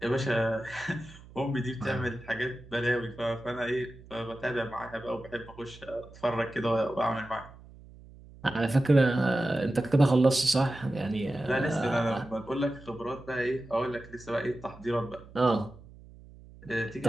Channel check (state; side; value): noise; right; hum, 20 dB below the sound